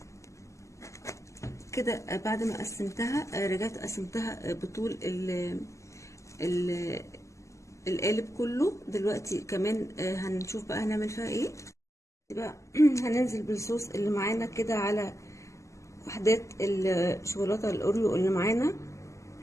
كده بعد ما قسمتها رجعت قسمتها بطول القالب كله. دلوقتي كمان هنشوف بقى هنعمل فيها ايه بقى. هننزل بالصوص اللي معانا كده على وحدات الشوكولاته الاوريو اللي معانا.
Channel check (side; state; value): right; late; 0.15 ms